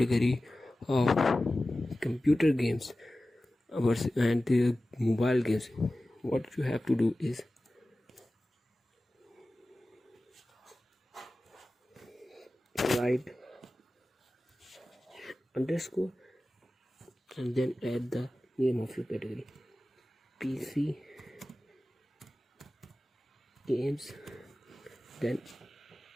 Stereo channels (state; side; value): normal; both; correlation 0.96